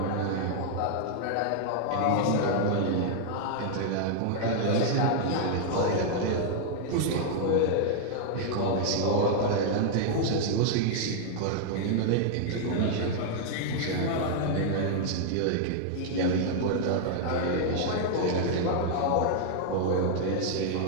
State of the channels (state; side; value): different; both; correlation -0.01